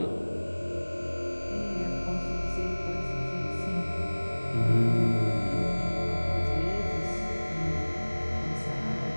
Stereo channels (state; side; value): inverted; both; correlation -1.00